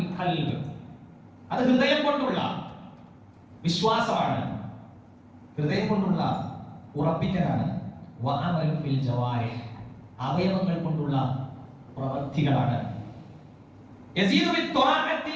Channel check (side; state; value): both; identical; correlation 1.00